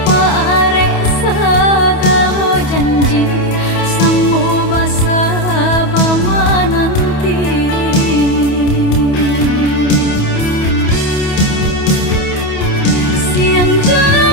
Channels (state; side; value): late; right; 28 ms